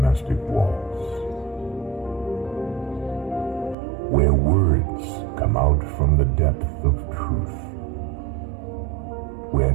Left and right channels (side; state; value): left; drops out; at 3.8 s